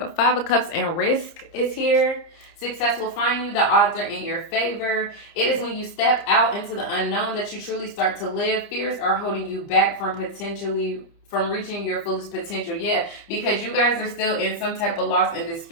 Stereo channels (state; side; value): late; right; 30 ms